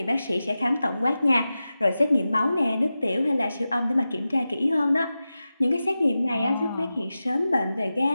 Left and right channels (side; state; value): both; inverted; correlation -0.94